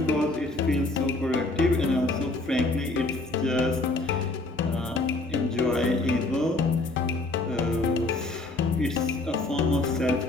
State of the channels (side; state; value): right; quieter; 3.1 dB